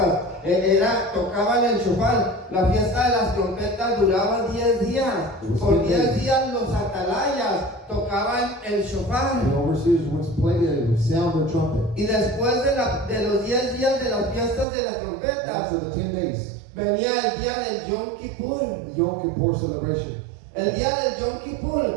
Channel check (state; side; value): drops out; left; at 14.7 s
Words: Tocaban el shofar. La fiesta de las trompetas duraba 10 días. Por 10 días los atalayas tocaban el shofar. The overseers would play the sound the trumpet. Y después de los 10 días de las fiestas de las trompetas, After the 10 days, venía el día del Yom Kippur. the Yom Kippur celebration. El día del Yom